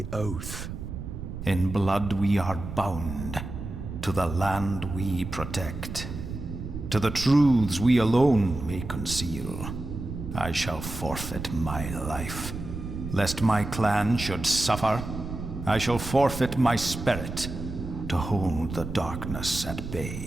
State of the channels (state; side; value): noise; right; rumble, 8 dB below the sound